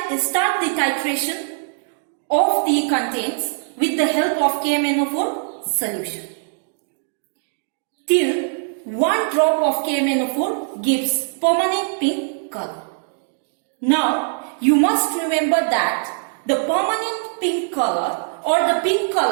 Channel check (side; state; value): left; silent; digital silence